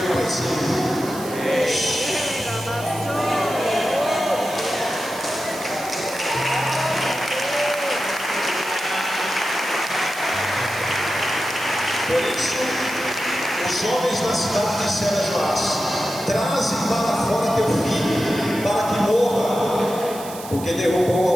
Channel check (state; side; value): noise; right; hiss, 14 dB below the sound